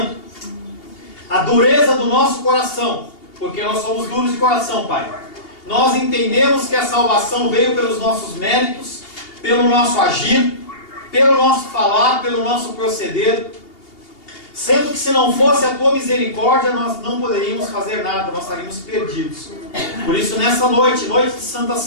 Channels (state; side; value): late; right; 2.8 ms